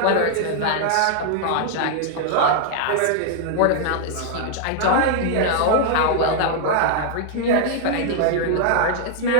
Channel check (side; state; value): both; different; correlation 0.00